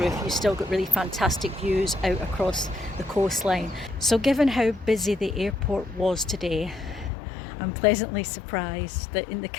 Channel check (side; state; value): right; drops out; at 7.1 s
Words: you still got really fantastic views out across the coastline. So given how busy the airport was today, I'm pleasantly surprised that in the